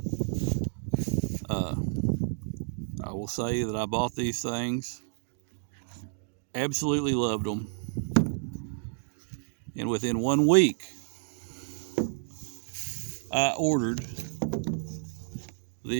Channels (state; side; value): silent; left; digital silence